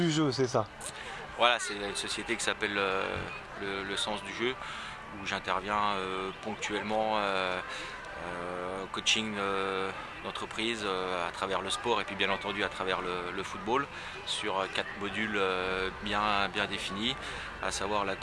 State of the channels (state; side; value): identical; both; correlation 1.00